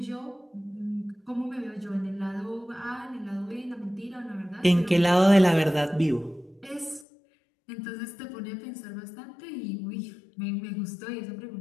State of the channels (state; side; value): drops out; right; at 7.1 s